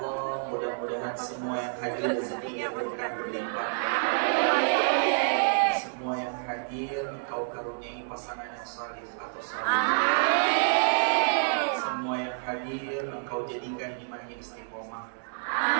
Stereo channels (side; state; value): left; silent; digital silence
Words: mudah-mudahan semua yang hadir rezekinya berkah berlimpah. Semua yang hadir Engkau karuniai pasangan yang saleh atau saleh. Semua yang hadir Engkau jadikan imannya istiqomah.